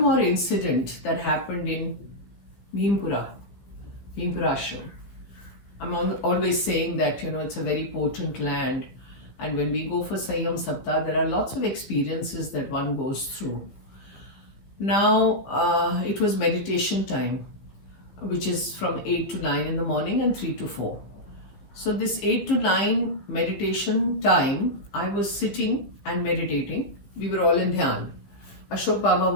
more incident that happened in Bhimpura Ashram. I'm always saying that, it's a very potent land. And when we go for Sanyam Saptah, there are lots of experiences that one goes through. Now, it was meditation time, which is from 8 to 9 in the morning and 3 to 4. So this 8 to 9 meditation time, I was sitting and meditating. We were all in Dhyan. Ashok Baba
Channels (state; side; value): late; right; 15 ms